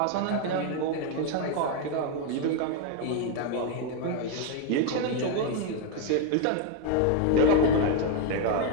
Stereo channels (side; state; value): both; different; correlation 0.01